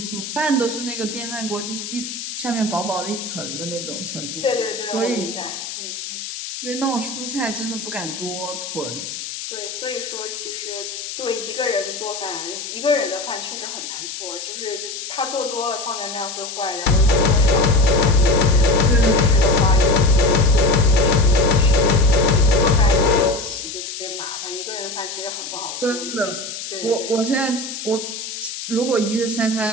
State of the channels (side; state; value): left; noise; hiss, 8 dB below the sound